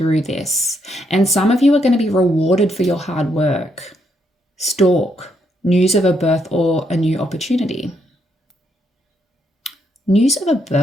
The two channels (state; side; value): normal; both; correlation 0.76